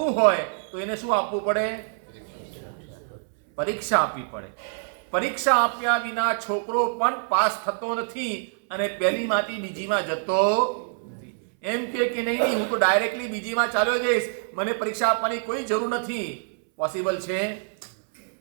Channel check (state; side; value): silent; left; 61 dB below the other